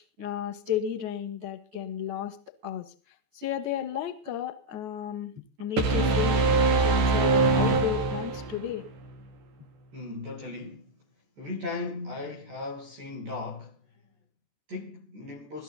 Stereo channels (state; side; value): late; left; 14 ms